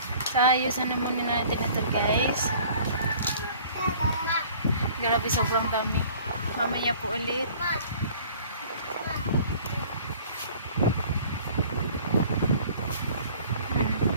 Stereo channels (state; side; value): inverted; both; correlation -0.50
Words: So ayusan naman natin ito guys. Grabe sobrang dami. Mamaya po ulit.